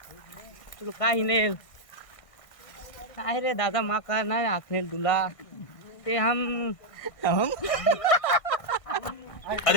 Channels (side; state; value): right; late; 1.5 ms